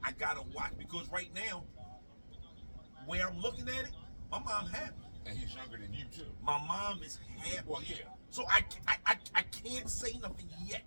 gotta watch because right now, where I'm looking at it, my mom happy. And he's younger than you too. My mom is happy. Well, yeah. So I can't say nothing yet.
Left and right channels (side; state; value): both; inverted; correlation -1.00